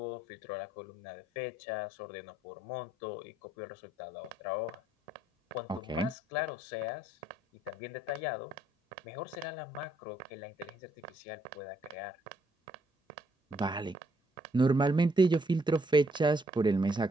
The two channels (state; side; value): normal; both; correlation 0.70